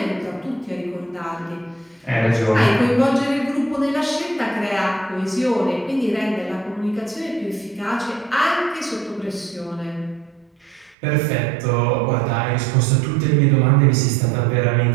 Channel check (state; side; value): drops out; left; at 11.0 s